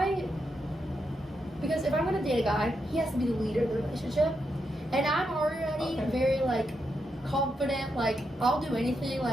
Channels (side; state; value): both; normal; correlation 0.83